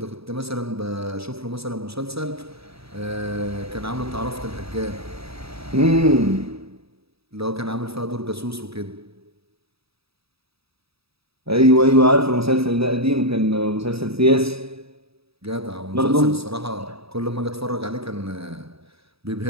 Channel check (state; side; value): late; left; 0.77 ms